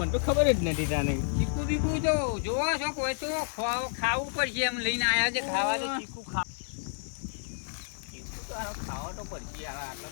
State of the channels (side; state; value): right; silent; digital silence